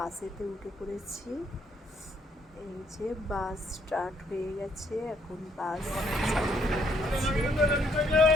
উঠে পড়েছি। এই যে বাস স্টার্ট হয়ে গেছে, এখন বাস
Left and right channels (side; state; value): both; normal; correlation 0.69